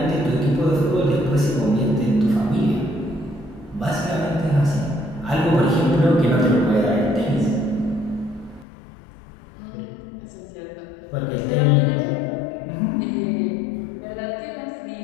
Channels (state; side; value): drops out; right; at 8.7 s